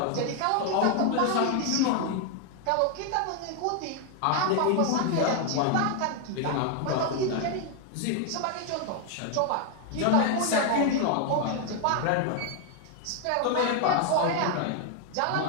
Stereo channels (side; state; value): both; different; correlation 0.01